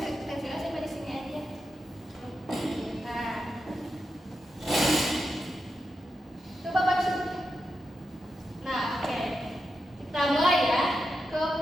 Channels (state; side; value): normal; both; correlation 0.88